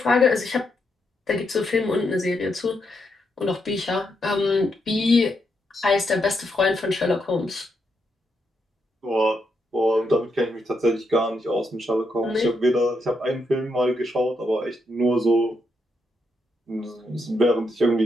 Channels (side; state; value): both; normal; correlation 0.80